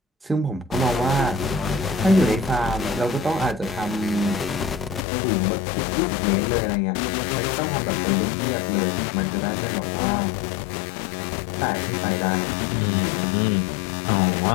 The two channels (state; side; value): drops out; right; at 5.0 s